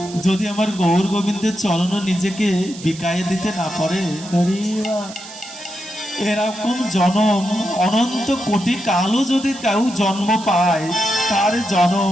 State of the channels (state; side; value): noise; right; hiss, 15 dB below the sound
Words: যদি আমার গৌর গোবিন্দের চরণ নিজেকে বিকায়ে দিতে না পারে, এরকম জনম অনন্ত কোটি কালও যদি কেউ জন্ম পায় তার